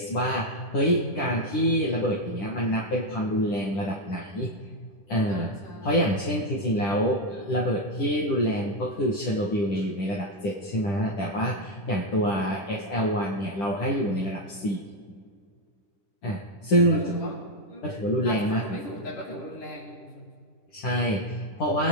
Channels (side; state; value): right; late; 10 ms